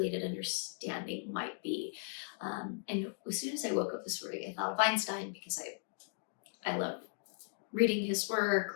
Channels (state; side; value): silent; right; digital silence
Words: understanding might be. And as soon as I woke up this morning, I thought of Einstein because I love reading his work